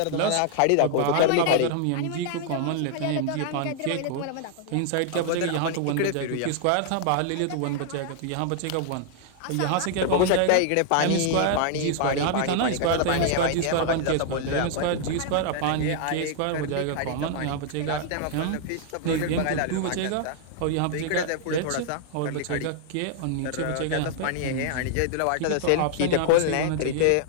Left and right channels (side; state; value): both; different; correlation -0.01